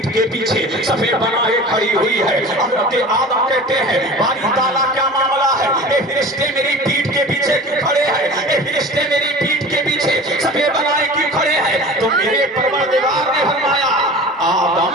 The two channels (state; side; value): normal; both; correlation 0.38